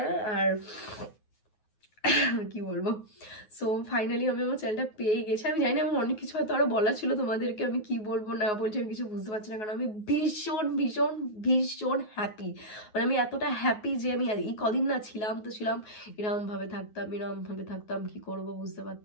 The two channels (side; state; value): right; late; 9.4 ms